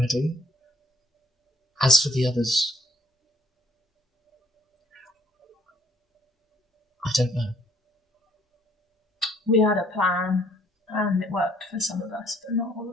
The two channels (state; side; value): normal; both; correlation 0.62